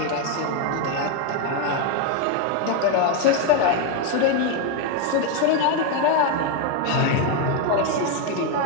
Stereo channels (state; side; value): different; both; correlation 0.02